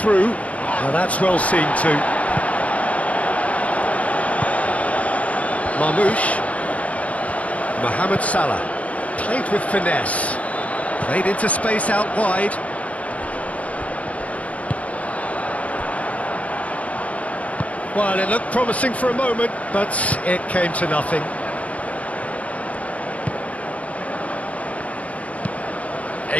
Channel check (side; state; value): right; late; 0.067 ms